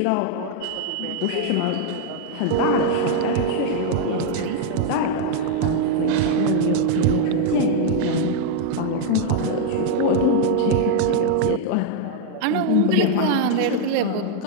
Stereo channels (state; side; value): different; both; correlation 0.00